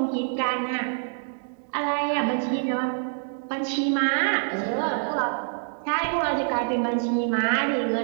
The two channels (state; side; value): silent; left; digital silence